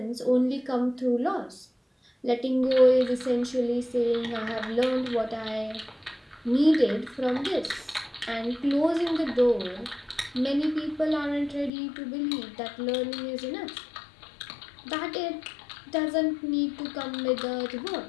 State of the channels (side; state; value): right; drops out; at 11.7 s